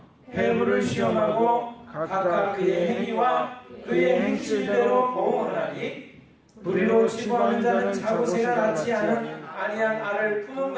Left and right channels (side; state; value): both; identical; correlation 1.00